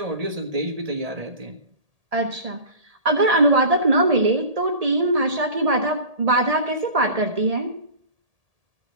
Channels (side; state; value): left; late; 1.8 ms